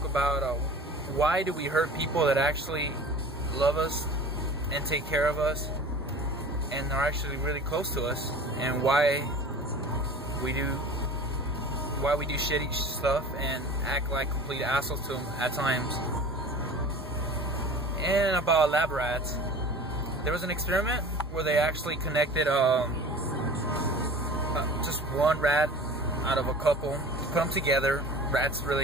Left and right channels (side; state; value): both; normal; correlation 0.40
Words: about why do we hurt people that actually love us and take care of us and are actually really close to us, and why we do shitty stuff and act like complete assholes to them at times. And about lab rats, there was an experiment where they actually connected just one rat out of a couple, put them together. Rats